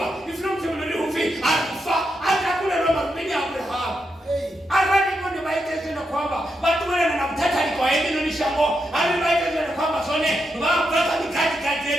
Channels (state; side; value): normal; both; correlation 0.84